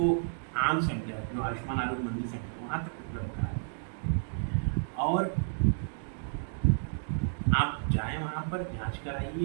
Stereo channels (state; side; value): silent; left; digital silence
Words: आम सेंटर, जो आयुष्मान आरोग्य मंदिर सेंटर, वहाँ तक उपलब्ध करा दिया और आप जाएं वहाँ पर, जांच